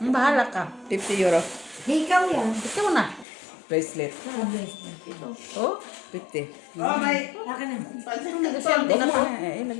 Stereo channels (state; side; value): drops out; right; at 3.2 s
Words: Bahala ka. 50 euro. Ikaw yan. Ikaw na. Bracelet. Oh? 50. Oh, may Akin na. Negosyante na pa.